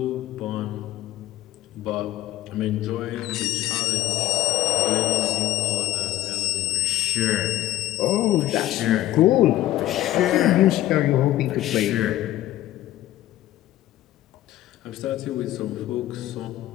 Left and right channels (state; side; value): quieter; right; 14.6 dB